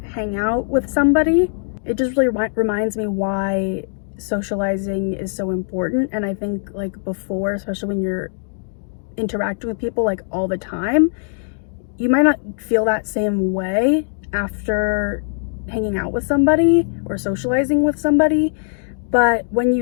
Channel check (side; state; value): right; silent; digital silence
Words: hangout with somebody. It just really reminds me why socializing is so important. And I think like before, especially when you're interacting with people like all the time, you might not feel that same way after hanging out with somebody or socializing with somebody. But when